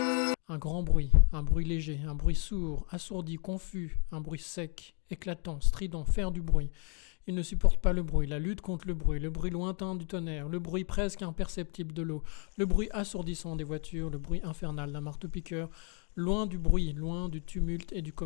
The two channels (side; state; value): right; quieter; 38.9 dB